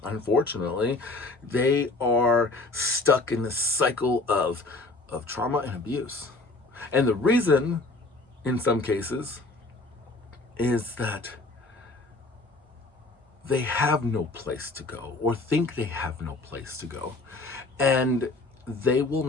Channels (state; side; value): quieter; right; 3.2 dB